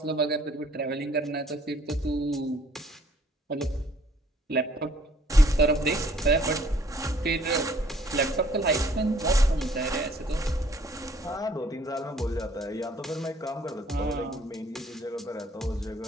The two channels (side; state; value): both; normal; correlation 0.60